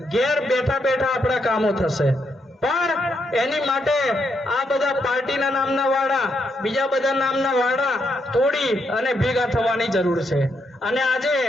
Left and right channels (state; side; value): normal; both; correlation 0.78